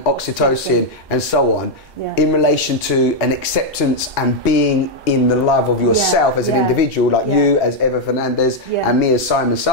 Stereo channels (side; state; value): both; normal; correlation 0.00